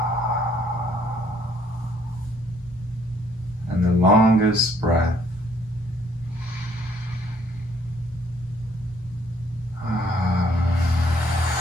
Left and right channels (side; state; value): both; normal; correlation 0.64